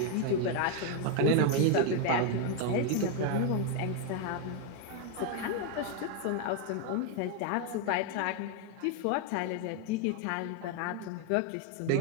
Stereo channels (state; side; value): different; both; correlation 0.01